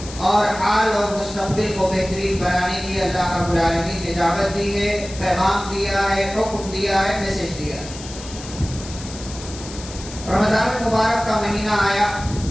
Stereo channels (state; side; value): noise; left; hiss, 14 dB below the sound